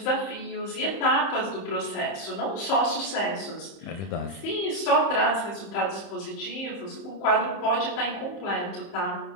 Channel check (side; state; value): right; late; 30 ms